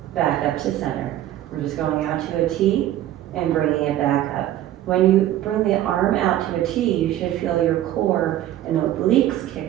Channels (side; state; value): left; quieter; 13.1 dB